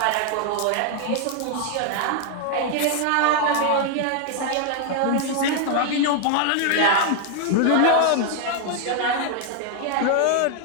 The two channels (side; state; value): both; different; correlation 0.01